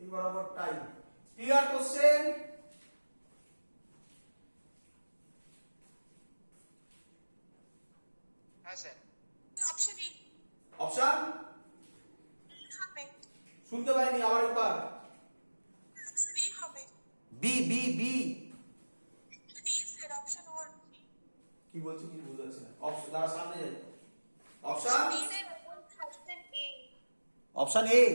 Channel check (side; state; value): both; inverted; correlation -1.00